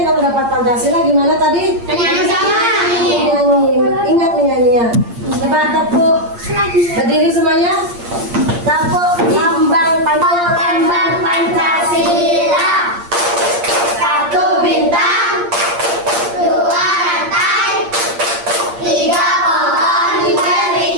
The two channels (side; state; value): left; late; 8.6 ms